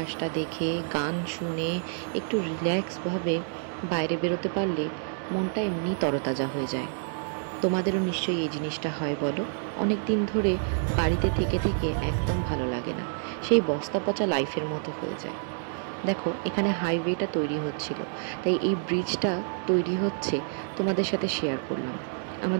দেখে, গান শুনে, একটু রিল্যাক্সভাবে বাইরে বেরোতে পারলে মনটা এমনি তরতাজা হয়ে যায়। তোমাদেরও নিশ্চয়ই এই জিনিসটা হয় বলো? অনেক দিন ধরে বাড়িতে থেকে থেকে একদম ভালো লাগে না, সেই বস্তা পচা লাইফের মতো হয়ে যায়। দেখো এখানে হাইওয়েটা তৈরি হচ্ছিল, তাই এই ব্রিজটা তৈরি হচ্ছে তোমাদের সাথে শেয়ার করলাম।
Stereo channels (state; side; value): silent; left; 57 dB below the other